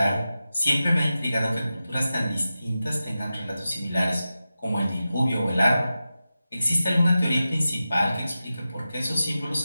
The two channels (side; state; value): both; inverted; correlation -0.93